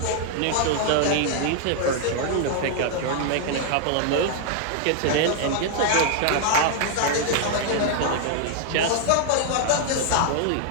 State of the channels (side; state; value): both; different; correlation 0.00